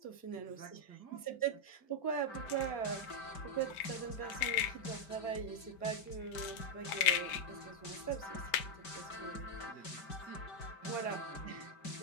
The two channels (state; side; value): late; right; 5.1 ms